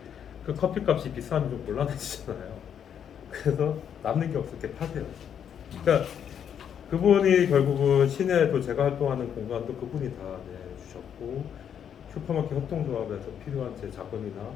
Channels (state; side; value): quieter; right; 8.5 dB